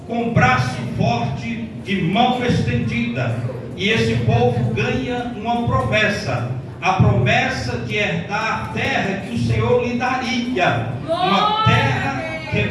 com braço forte e mão estendida, e esse povo ganha uma promessa, a promessa de herdar a terra que o Senhor lhe daria, uma terra que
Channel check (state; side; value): identical; both; correlation 1.00